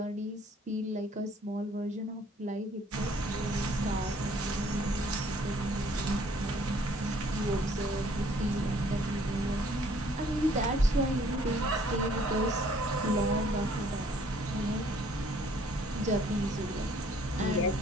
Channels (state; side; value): normal; both; correlation 0.60